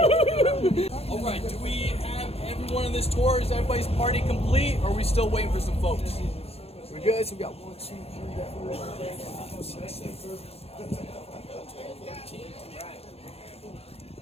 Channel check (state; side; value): late; right; 0.29 ms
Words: All right, do we have everyone on this tour? Is everybody's party complete, or are we still waiting for some folks? We're good. So we got 1, 2, 3, 4, 5, 6, 7, 8, 9, 10.